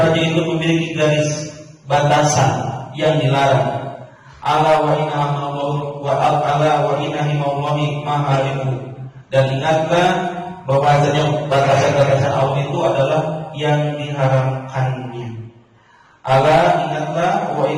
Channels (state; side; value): identical; both; correlation 1.00